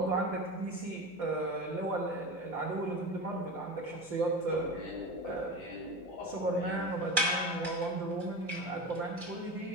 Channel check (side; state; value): left; noise; hum, 28 dB below the sound